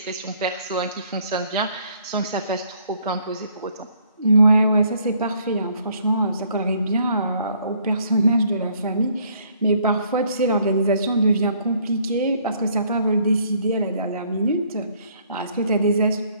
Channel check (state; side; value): inverted; both; correlation -0.64